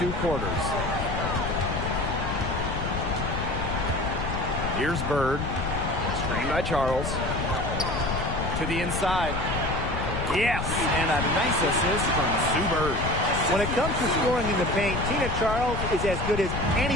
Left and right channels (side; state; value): left; noise; rumble, 3 dB below the sound